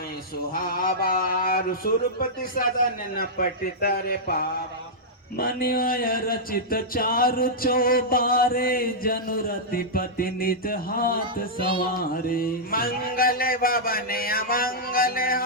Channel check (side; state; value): both; normal; correlation -0.10